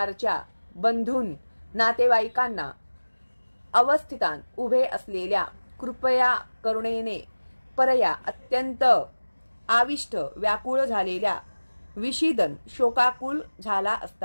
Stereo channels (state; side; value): inverted; both; correlation -1.00